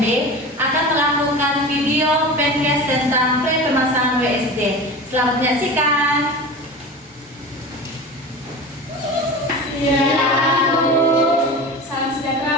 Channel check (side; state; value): both; normal; correlation 0.32